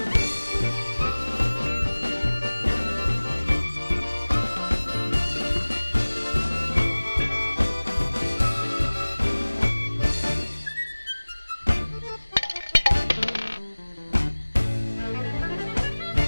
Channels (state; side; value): inverted; both; correlation -1.00